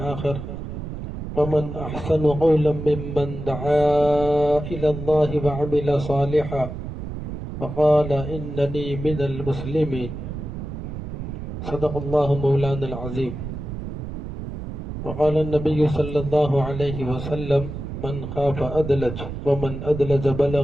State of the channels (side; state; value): right; noise; rumble, 7 dB below the sound